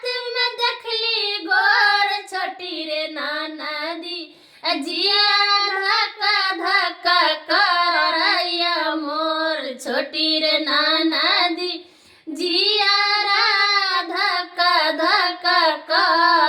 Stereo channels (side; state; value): both; identical; correlation 1.00